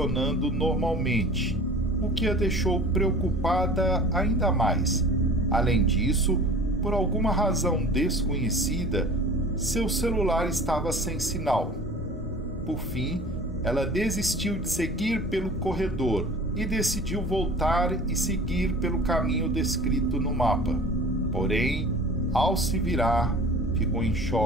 normalmente, o que a deixou preocupada ainda mais. Além disso, por alguma razão desconhecida, seu celular estava sem sinal. Por fim, ela desistiu de seguir pelo corredor e decidiu voltar e seguir pelo caminho descrito no mapa. Porém, ao se virar, ficou em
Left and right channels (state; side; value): normal; both; correlation 0.42